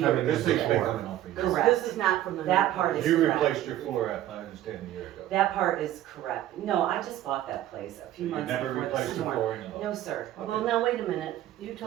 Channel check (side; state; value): left; quieter; 13.2 dB